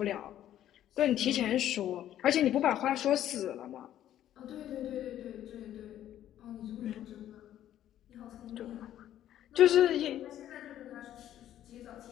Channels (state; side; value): quieter; right; 11.8 dB